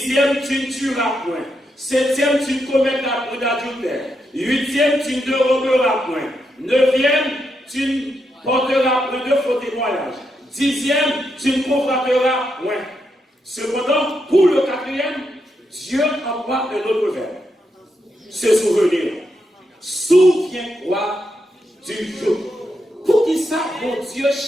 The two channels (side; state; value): both; normal; correlation 0.82